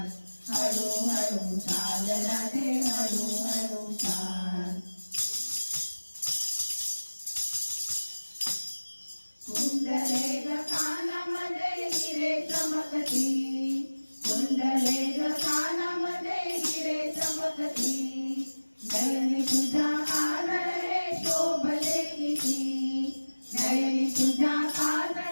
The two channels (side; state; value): both; inverted; correlation -1.00